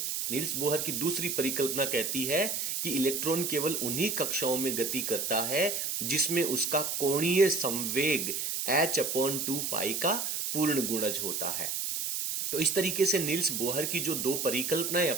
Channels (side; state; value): right; noise; hiss, 1 dB below the sound